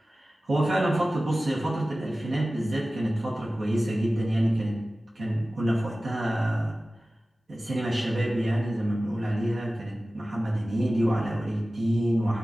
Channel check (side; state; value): both; normal; correlation 0.96